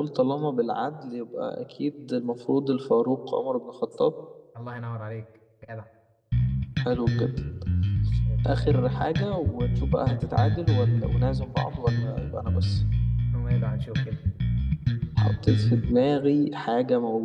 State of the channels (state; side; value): identical; both; correlation 1.00